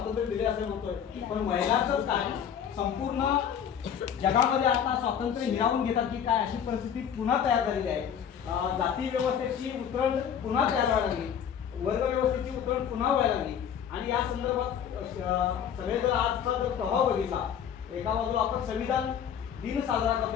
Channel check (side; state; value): right; quieter; 8.5 dB